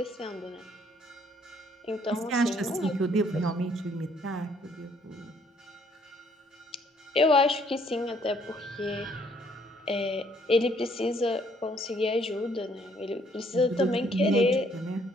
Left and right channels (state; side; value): normal; both; correlation 0.65